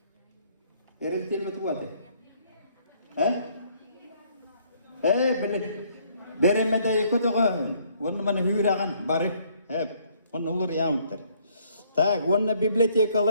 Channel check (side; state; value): both; inverted; correlation -0.65